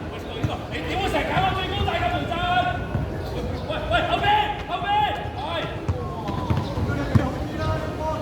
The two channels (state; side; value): identical; both; correlation 1.00